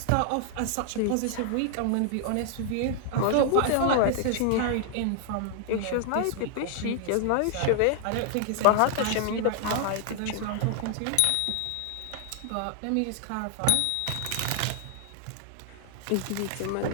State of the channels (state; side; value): different; both; correlation 0.00